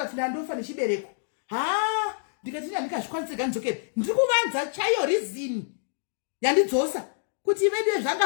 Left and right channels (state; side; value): silent; right; digital silence